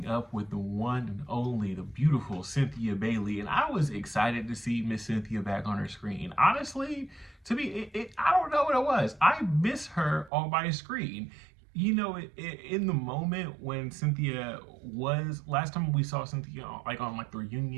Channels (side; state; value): left; drops out; at 10.3 s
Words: up with the one and only, the beautiful Cynthia Bailey. And I was excited to see Miss Cynthia back on her screen. Honestly, I don't know what it was. I miss her on my screen. In the moment when Cynthia last time we saw Cynthia on the